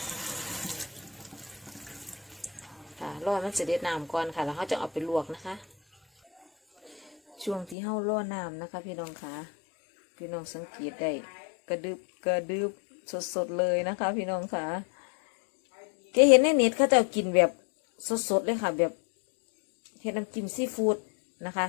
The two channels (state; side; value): drops out; right; at 7.8 s